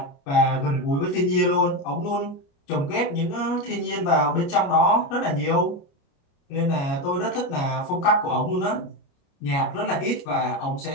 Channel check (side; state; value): right; late; 29 ms